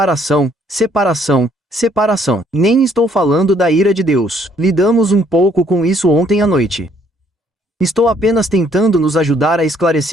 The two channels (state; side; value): normal; both; correlation 0.65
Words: separação, separação. Nem estou falando da ira de Deus. Lidamos um pouco com isso ontem à noite. Estou apenas tentando nos ajudar a